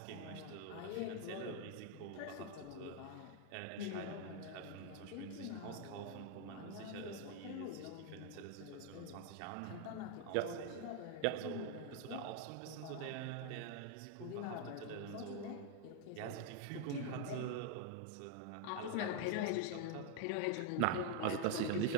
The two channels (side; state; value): both; different; correlation 0.01